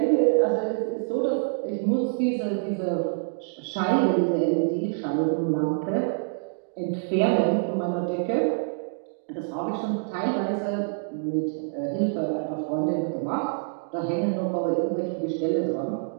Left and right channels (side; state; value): left; silent; digital silence